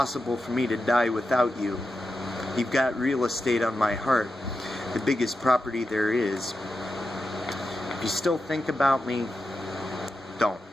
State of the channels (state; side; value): normal; both; correlation 0.89